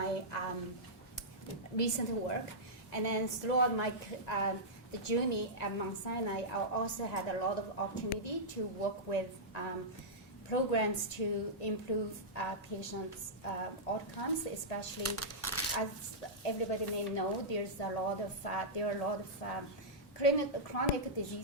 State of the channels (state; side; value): normal; both; correlation -0.12